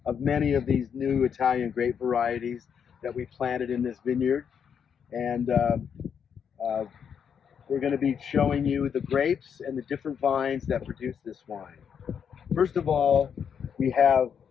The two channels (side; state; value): right; quieter; 7.5 dB